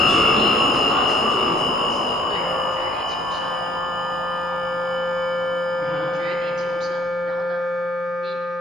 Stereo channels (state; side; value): normal; both; correlation 0.60